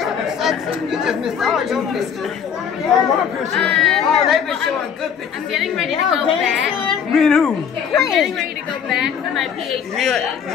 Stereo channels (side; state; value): right; quieter; 7.6 dB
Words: You just missed all your pictures. Oh, they've been showing good pictures. I'm getting ready to go back. Me and who? I'm getting ready to go back for my PhD.